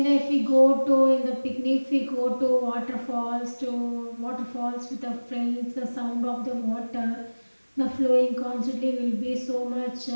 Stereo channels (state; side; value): inverted; both; correlation -1.00